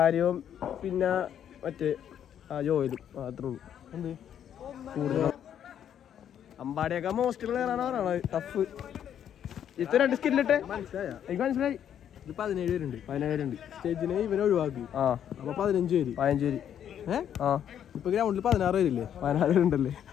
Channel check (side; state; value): right; quieter; 9.6 dB